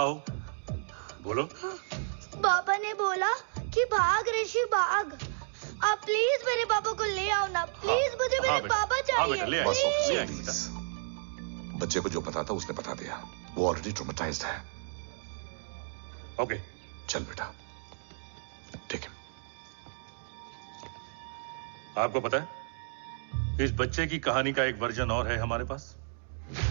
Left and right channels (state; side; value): silent; left; digital silence